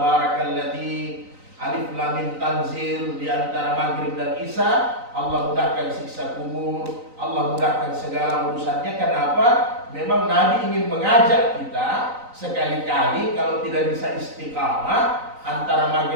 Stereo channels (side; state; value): left; late; 3.9 ms